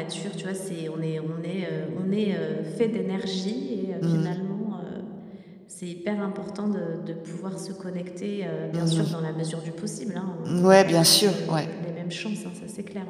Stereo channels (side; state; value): both; identical; correlation 1.00